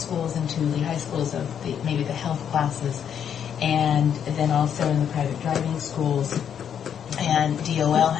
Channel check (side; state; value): right; quieter; 8.5 dB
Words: into the high schools of maybe the health classes, and then also in the private driving schools. And DOL